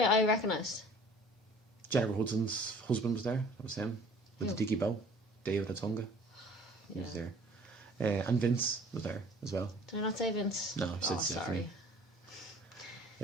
recognised. Jennifer Hudson's husband was there. That was him. With the dicky bow. David Atunga. He was there. And Vince was there as well. Did I not say Vince? No, I said Stephanie.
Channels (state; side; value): normal; both; correlation 0.50